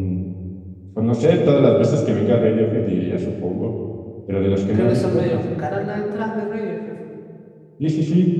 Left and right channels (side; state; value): both; identical; correlation 1.00